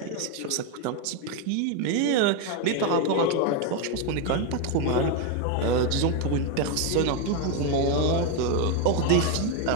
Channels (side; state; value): both; different; correlation 0.02